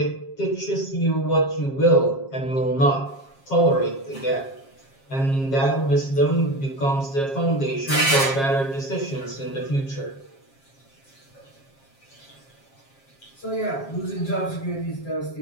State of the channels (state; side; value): late; right; 7.4 ms